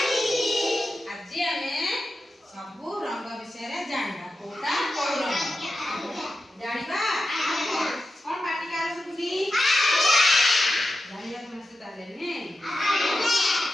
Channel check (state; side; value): normal; both; correlation 0.90